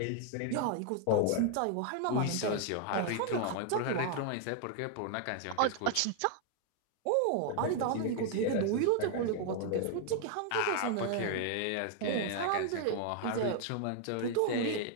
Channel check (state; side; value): different; both; correlation 0.00